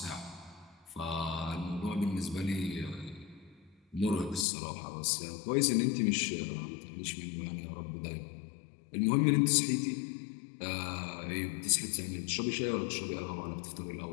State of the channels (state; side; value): drops out; right; at 4.5 s